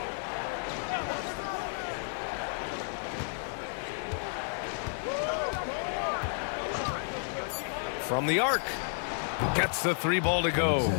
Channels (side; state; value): right; silent; 57 dB below the other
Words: From the arc. Gets the 3 ball to go.